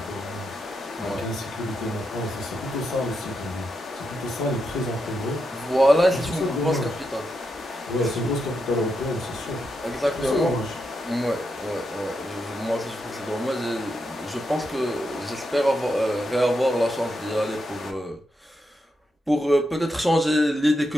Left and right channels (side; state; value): both; normal; correlation 0.84